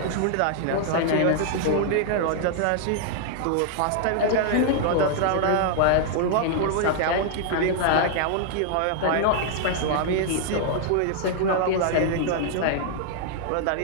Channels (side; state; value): both; different; correlation -0.01